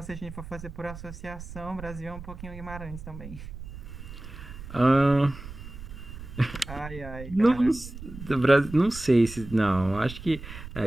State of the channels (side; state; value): right; noise; rumble, 12 dB below the sound